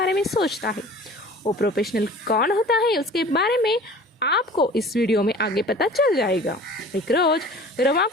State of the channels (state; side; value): normal; both; correlation 0.44